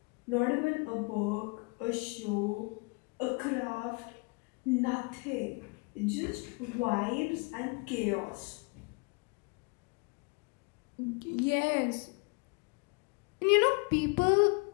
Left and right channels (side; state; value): right; quieter; 31.6 dB